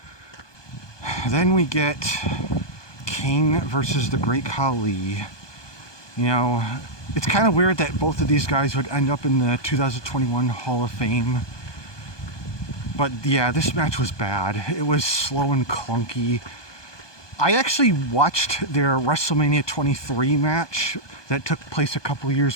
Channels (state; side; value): late; right; 1.2 ms